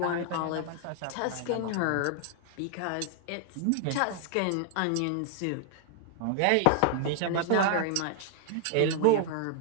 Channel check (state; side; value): different; both; correlation 0.00